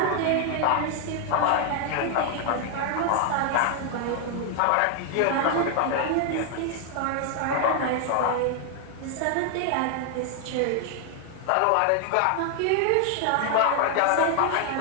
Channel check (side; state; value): both; different; correlation 0.00